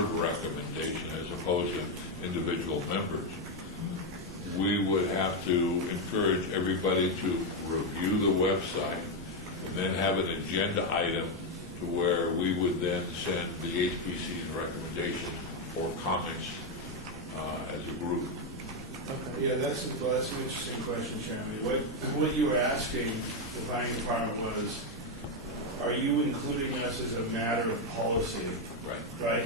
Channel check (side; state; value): both; normal; correlation 0.05